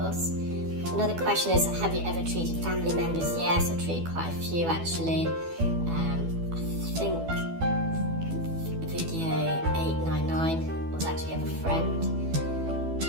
Another question is, have you ever treated family members? Yes, I've treated quite a few actually. I think video 899 was actually of a friend.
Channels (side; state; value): left; late; 12 ms